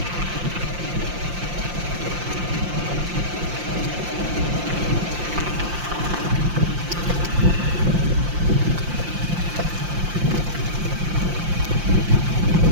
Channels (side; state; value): left; late; 5.7 ms